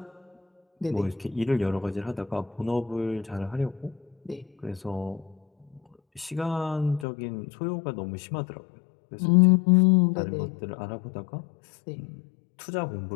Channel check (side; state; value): right; drops out; at 7.1 s